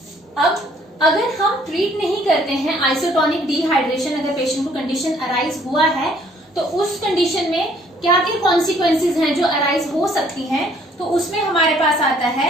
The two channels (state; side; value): normal; both; correlation 0.62